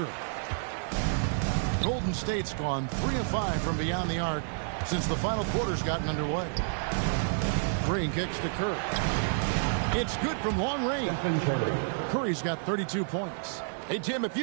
Golden State's gone 3 of 5 from beyond the arc since the final quarter's gotten underway. Green kicks to Curry. It's good from long range. Curry's got 32 points. Hey, Tim, if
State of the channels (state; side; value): silent; left; digital silence